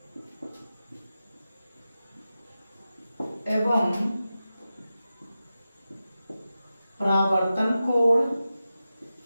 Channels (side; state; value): both; inverted; correlation -0.93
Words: एवं परावर्तन कोण